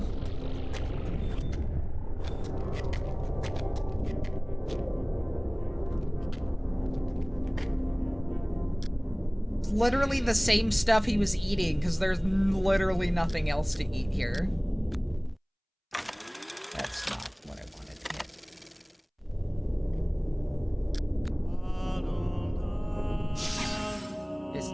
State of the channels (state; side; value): identical; both; correlation 1.00